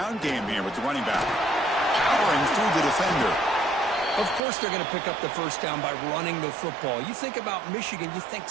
game here with the running back. Powering through the defender. Of course they're going to pick up the first down by running the football. You think about Michigan, you think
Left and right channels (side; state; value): left; drops out; at 4.4 s